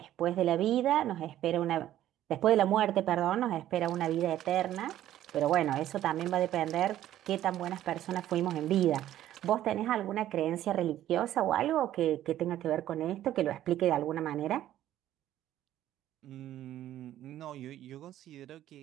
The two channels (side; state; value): left; quieter; 12.7 dB